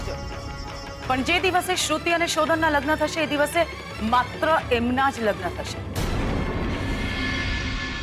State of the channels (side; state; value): both; identical; correlation 1.00